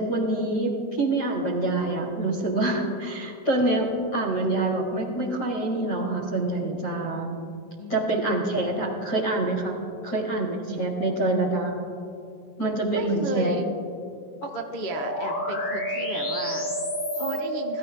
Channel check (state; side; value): late; right; 16 ms